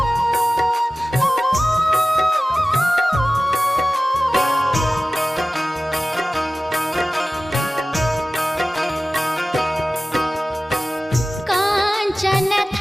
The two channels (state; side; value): normal; both; correlation 0.96